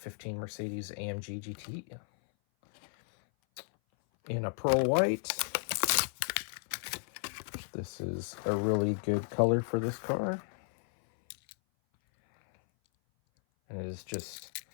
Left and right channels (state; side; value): silent; right; 55 dB below the other